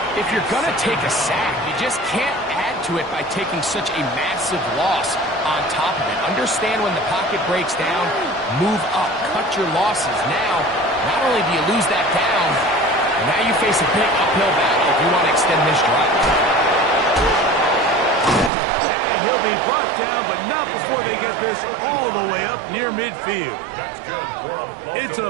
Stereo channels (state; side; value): drops out; left; at 18.5 s